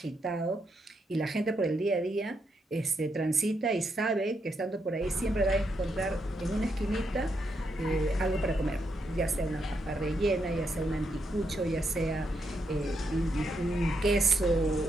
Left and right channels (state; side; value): normal; both; correlation 0.80